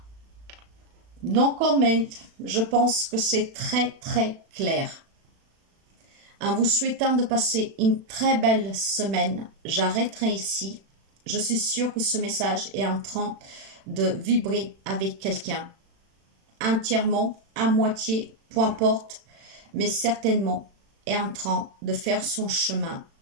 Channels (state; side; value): late; left; 36 ms